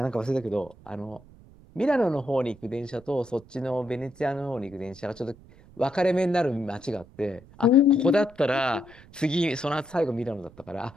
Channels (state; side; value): noise; right; rumble, 23 dB below the sound